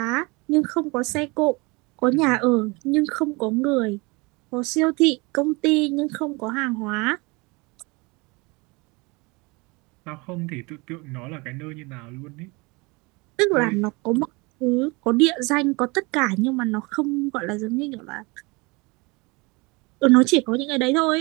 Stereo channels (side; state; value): left; quieter; 26.4 dB